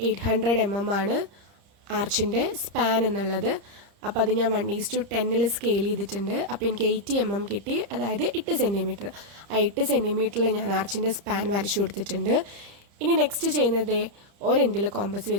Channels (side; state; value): left; late; 30 ms